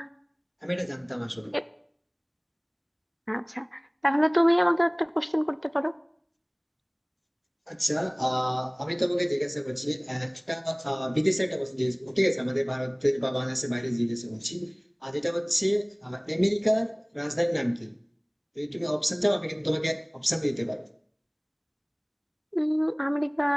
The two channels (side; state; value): both; identical; correlation 1.00